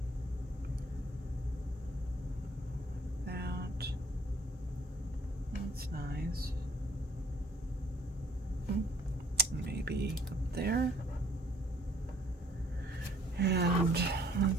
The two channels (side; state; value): both; normal; correlation 0.60